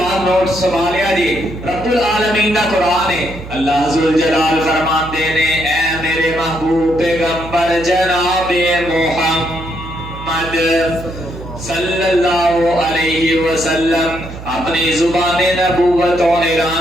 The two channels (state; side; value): noise; right; hum, 13 dB below the sound